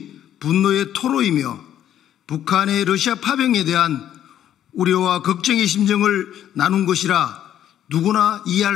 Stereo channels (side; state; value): right; quieter; 10.9 dB